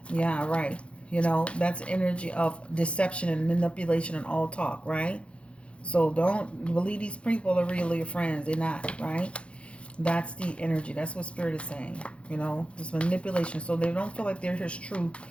yeah, right. You know, that's energy of deception and manipulation and all talk, right? So don't believe these people are really your friends. They're not, right? That's the energy. That's what Spirit is saying. You know, this manipulation. So they don't feel like they're his true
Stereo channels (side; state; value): right; late; 0.060 ms